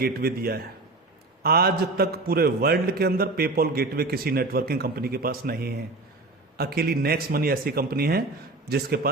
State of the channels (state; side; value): quieter; left; 3.2 dB